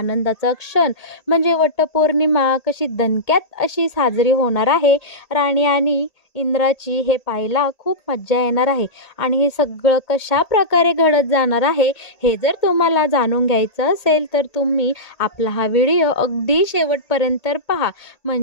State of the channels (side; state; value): right; late; 1.8 ms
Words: क्षण म्हणजे वटपौर्णिमा कशी दणक्यात अशी साजरी होणार आहे राणी आणि इंद्राची, हे पाहायला खूप मज्जा येणार आहे. आणि हे सगळं कशा प्रकारे घडत जाणार आहे हे जर तुम्हाला जाणून घ्यायचं असेल तर तुम्ही आपला हा व्हिडिओ अगदी शेवटपर्यंत पहा,